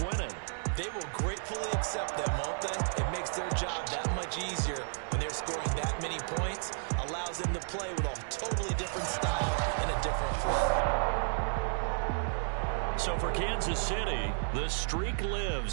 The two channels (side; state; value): left; silent; 56 dB below the other